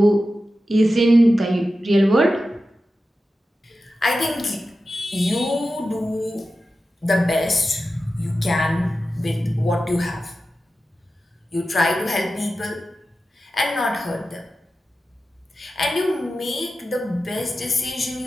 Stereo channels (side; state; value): both; normal; correlation 0.93